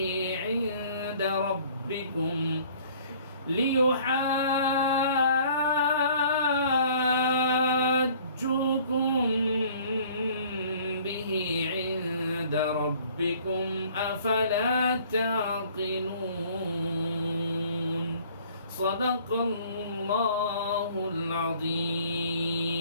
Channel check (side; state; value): both; inverted; correlation -0.54